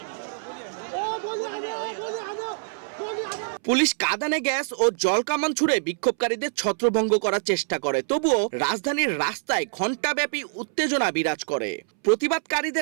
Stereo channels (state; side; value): silent; left; 62 dB below the other